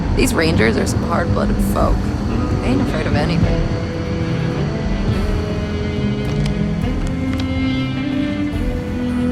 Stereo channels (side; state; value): both; identical; correlation 1.00